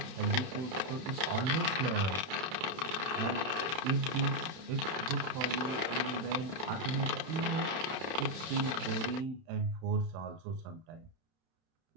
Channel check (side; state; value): left; late; 31 ms